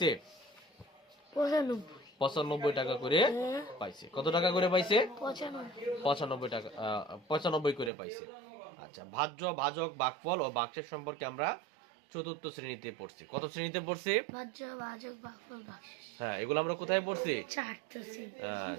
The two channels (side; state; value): left; drops out; at 7.9 s